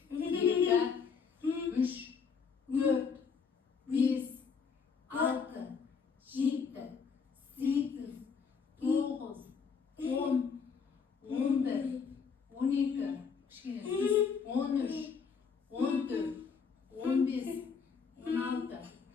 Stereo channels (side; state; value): right; quieter; 5.9 dB